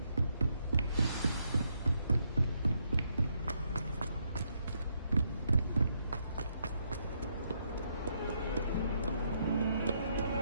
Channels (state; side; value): inverted; both; correlation -0.76